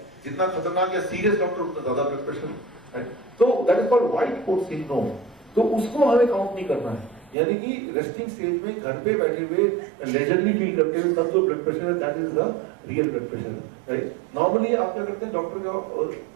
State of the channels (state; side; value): drops out; left; at 7.4 s